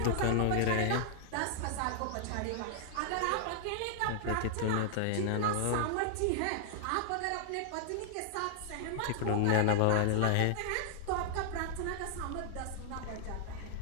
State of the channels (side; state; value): both; different; correlation -0.01